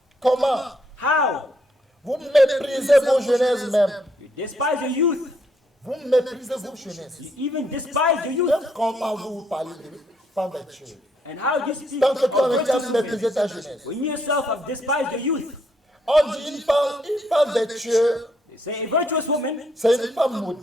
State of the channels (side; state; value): both; normal; correlation 0.72